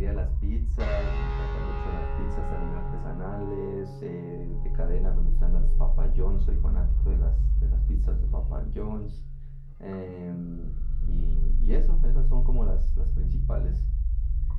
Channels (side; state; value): both; identical; correlation 1.00